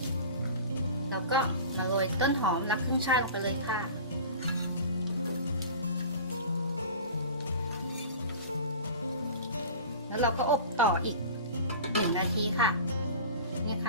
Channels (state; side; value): inverted; both; correlation -0.37